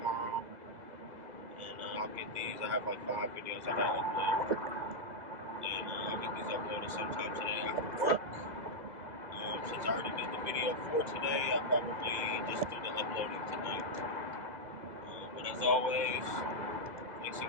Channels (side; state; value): left; late; 2.0 ms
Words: And I'll get these. I have like 5 videos I gotta upload. And I'll get these uploaded sometime today after work. Since I already did the video for today, I'll probably just do the uploading tonight. But as always, thanks